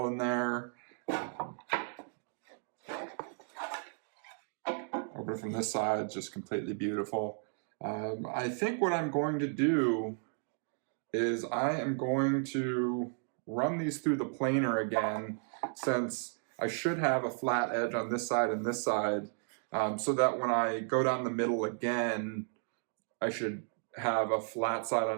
in there. Open from this side, just completely beautiful. I think what I'm going to do is I am going to run these through the planer again, since I should have a flat edge on this side and this side, so that when I go down the middle again, I should have a flat side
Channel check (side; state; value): left; silent; 55 dB below the other